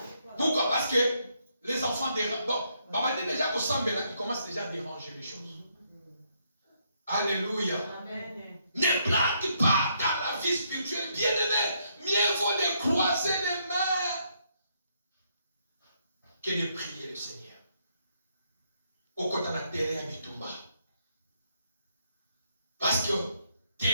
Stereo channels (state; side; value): inverted; both; correlation -0.74